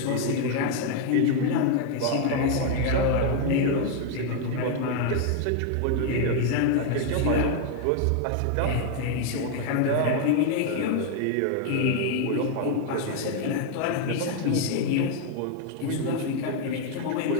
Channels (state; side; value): different; both; correlation 0.01